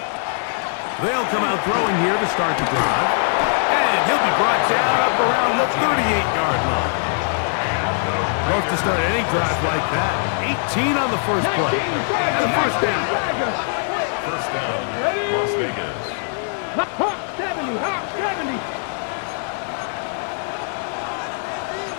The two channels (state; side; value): silent; right; 58 dB below the other